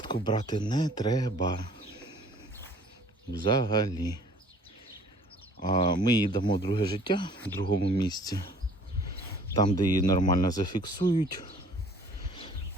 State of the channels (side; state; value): both; normal; correlation 0.53